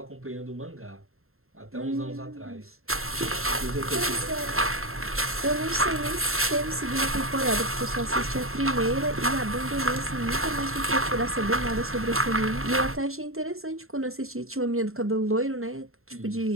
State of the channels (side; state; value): left; late; 0.62 ms